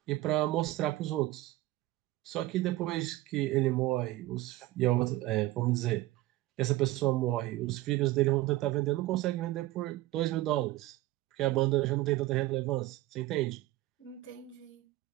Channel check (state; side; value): quieter; left; 17.4 dB